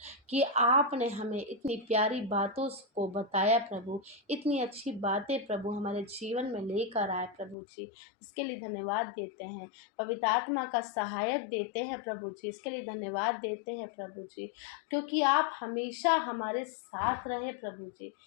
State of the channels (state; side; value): drops out; right; at 7.6 s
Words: कि आपने हमें इतनी प्यारी बातों को बताया प्रभु, इतनी अच्छी बातें प्रभु हमारे जीवन में लेकर आए प्रभु जी। इसके लिए धन्यवाद देते हैं। पवित्र आत्मा का सहायक देते हैं प्रभु जी, इसके लिए धन्यवाद देते हैं प्रभु जी, क्योंकि आप हमेशा हमारे साथ रहे प्रभु जी।